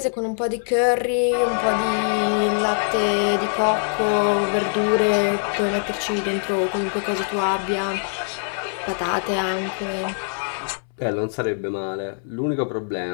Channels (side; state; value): right; silent; 64 dB below the other